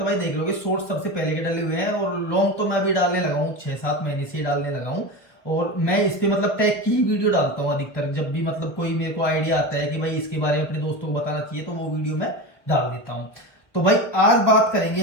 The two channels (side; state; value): right; late; 1.2 ms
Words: भाई देख लोगे शॉर्ट्स सबसे पहले के डले हुए हैं, और लॉन्ग तो मैं अभी डालने लगा हूँ 6-7 महीने से ही डालने लगा हूँ। और मैं इस पे मतलब टैग की ही वीडियो डालता हूँ अधिकतर, जब भी मतलब कोई मेरे को आइडिया आता है कि भाई इसके बारे में अपने दोस्तों को बताना चाहिए तो वो वीडियो मैं डाल देता हूँ। तो भाई आज बात करेंगे